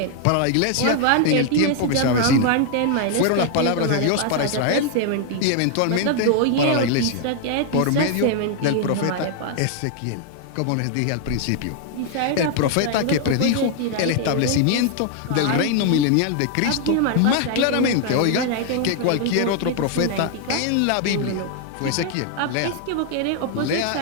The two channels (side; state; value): both; different; correlation 0.00